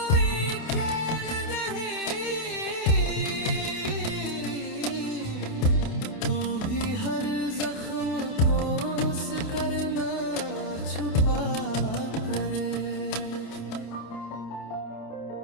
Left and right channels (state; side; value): late; right; 28 ms